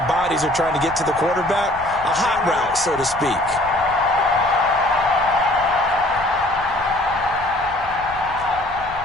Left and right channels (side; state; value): left; noise; rumble, 17 dB below the sound